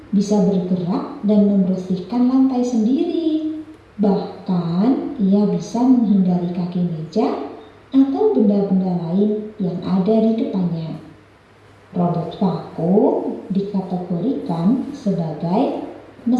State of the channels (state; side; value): identical; both; correlation 1.00